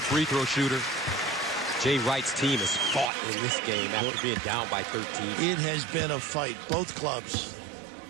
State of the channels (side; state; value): left; drops out; at 3.1 s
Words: free throw shooter. Jay Wright's team has fought in this game after being down by 13. It has been a fight, both clubs.